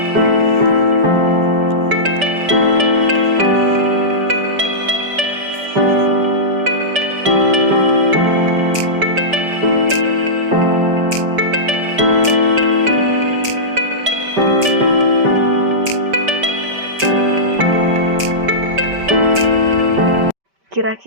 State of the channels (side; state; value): left; late; 5.1 ms